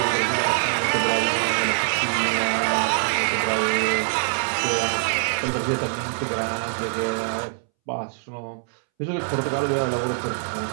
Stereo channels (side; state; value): left; silent; 63 dB below the other